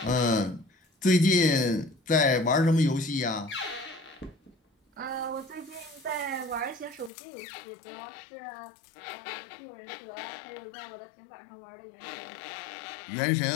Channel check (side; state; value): right; drops out; at 7.1 s